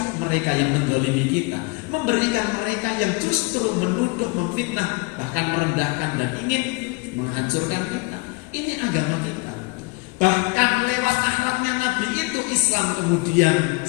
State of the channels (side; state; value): right; quieter; 27.8 dB